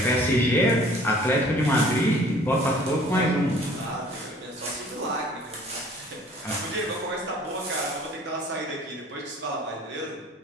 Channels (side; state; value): both; normal; correlation 0.52